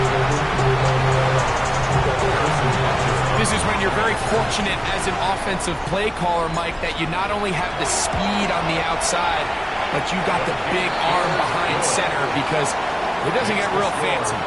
This is when you're very fortunate as an offensive play caller, Mike, that you not only have the speed on the outside, but you got the big arm behind center, because it doesn't get real fancy.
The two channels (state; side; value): identical; both; correlation 1.00